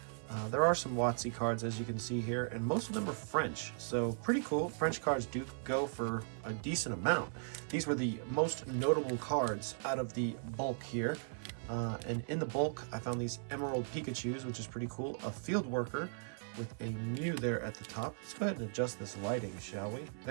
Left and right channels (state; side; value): silent; left; 53 dB below the other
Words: There are some WotC cards, as you can see here, and most of them are French, so pretty cool. French cards do go for a decent amount. These were the most notable cards out of the bulk here. And in the bulk, I found these Emerald Pikachus, which is pretty cool. A Field Worker with a Mew there at the top. Let's go ahead and adjust this lighting, shall we?